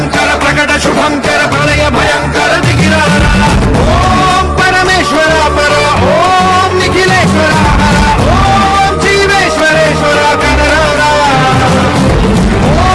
प्रकट शुभंकर प्रलय भयंकर दिगिरारा ओम परमेश्वर पर ओम निखिलेश्वर हर ओम जीवेश्वरेश्वर कनरारा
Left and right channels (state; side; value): identical; both; correlation 1.00